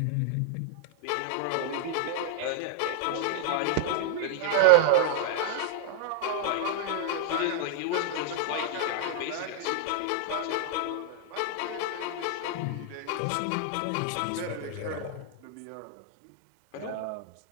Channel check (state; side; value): different; both; correlation 0.00